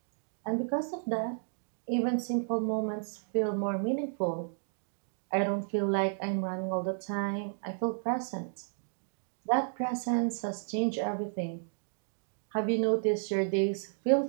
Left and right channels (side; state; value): left; silent; digital silence